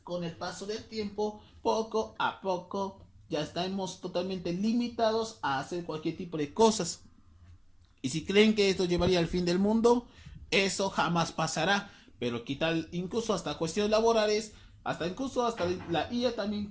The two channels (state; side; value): identical; both; correlation 1.00